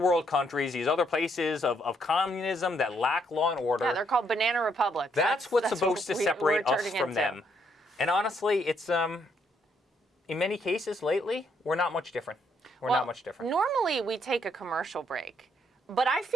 world countries, these other places of communism that lack law and order. Yeah, they're called banana republics. That's what's supposed to separate us from them. And honestly, it's in many cases lately, we're not much different. We're not much different. Normally we take a commercial break, but I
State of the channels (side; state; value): both; normal; correlation 0.72